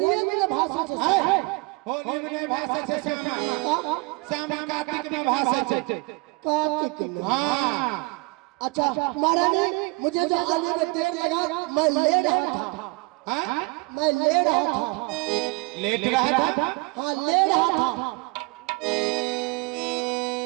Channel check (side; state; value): left; quieter; 27.3 dB